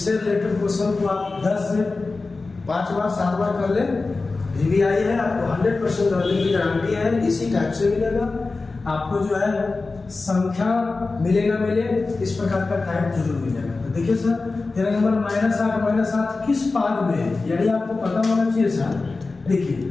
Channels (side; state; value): right; quieter; 3.7 dB